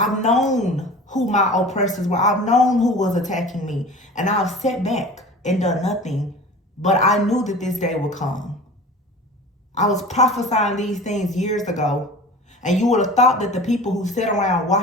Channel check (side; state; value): both; normal; correlation 0.38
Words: known who my oppressors were. I've known who was attacking me. And I've sat back and done nothing. But I knew that this day would come. I was prophesying these things years ago. And you would have thought that the people who sat around